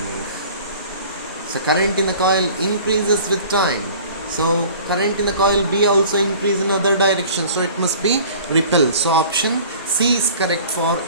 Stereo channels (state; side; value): inverted; both; correlation -0.46